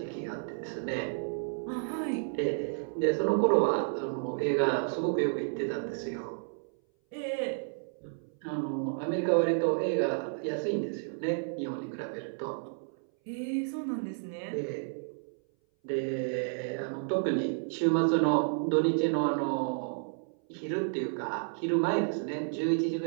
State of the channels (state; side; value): silent; left; 57 dB below the other